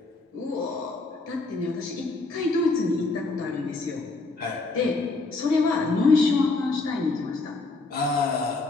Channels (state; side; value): quieter; right; 3.5 dB